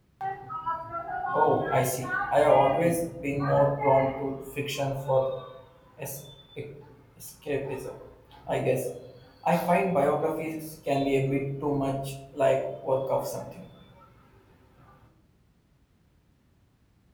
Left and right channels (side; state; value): both; identical; correlation 1.00